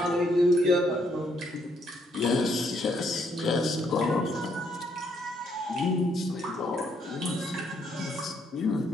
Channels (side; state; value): both; normal; correlation 0.72